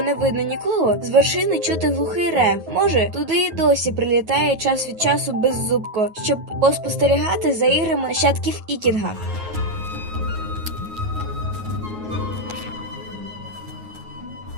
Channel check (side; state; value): left; late; 9.4 ms